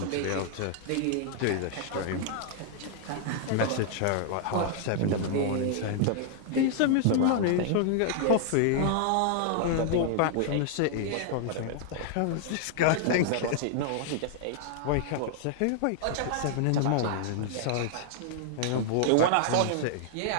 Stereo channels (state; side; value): different; both; correlation 0.00